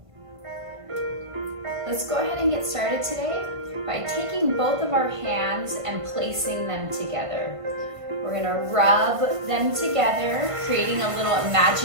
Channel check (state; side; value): late; left; 1.5 ms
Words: Let's go ahead and get started today by taking both of our hands and placing them together. We're gonna rub them together, creating a little